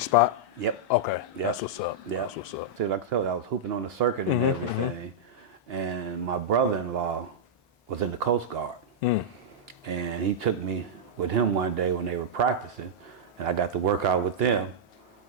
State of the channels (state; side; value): normal; both; correlation -0.07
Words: spot? Yep. Okay. Yep. That's what's up. Yep. That's what's up. See, like I told you, I was hooping on the circuit and everything. And my brother-in-law was in the Coast Guard. And he took me with him one day when they were practicing, and I got to work out with them,